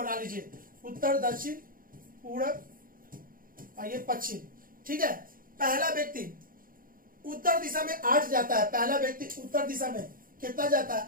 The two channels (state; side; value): late; left; 0.41 ms